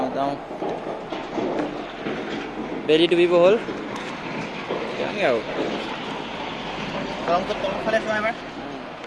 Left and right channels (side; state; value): both; identical; correlation 1.00